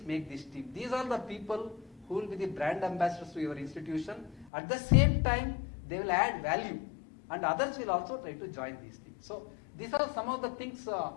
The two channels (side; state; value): right; drops out; at 4.5 s